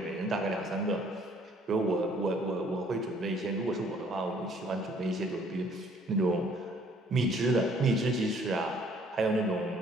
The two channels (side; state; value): both; normal; correlation 0.60